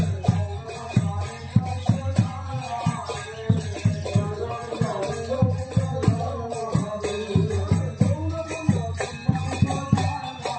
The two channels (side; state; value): both; identical; correlation 1.00